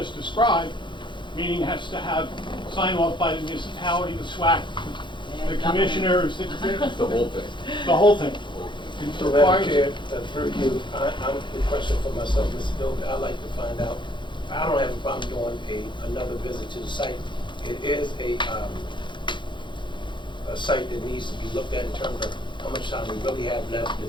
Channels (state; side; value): late; right; 0.23 ms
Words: described, meaning it has to have sign off by the municipality, the SWAC, the commissioners, the whole thing. The whole thing. So, Madam Chair, through you, I'm the question for myself, Mr. Doby. I'd like to find out. I don't have a problem doing another visit to the site. It is a site that needs to be looked at in terms of how much time we really have left.